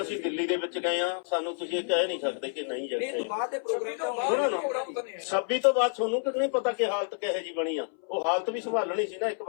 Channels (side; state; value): right; silent; 59 dB below the other